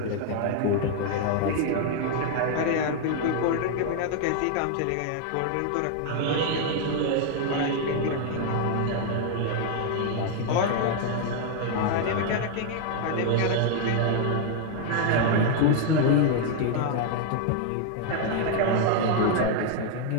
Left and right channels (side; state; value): both; different; correlation 0.00